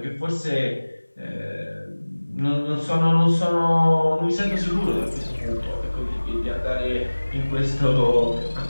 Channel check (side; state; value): both; inverted; correlation -1.00